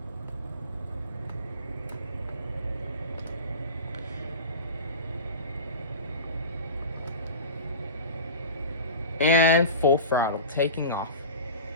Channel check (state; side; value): inverted; both; correlation -0.32